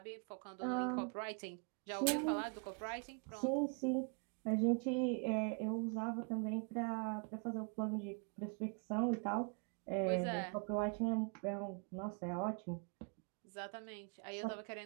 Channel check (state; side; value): quieter; left; 39.5 dB